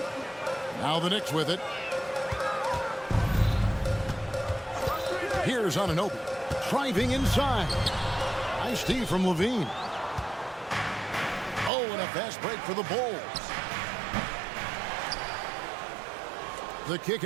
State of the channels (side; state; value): left; drops out; at 11.7 s